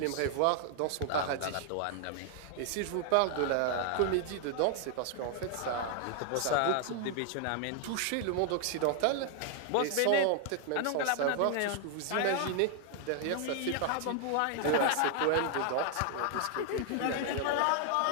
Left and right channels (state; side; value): different; both; correlation 0.00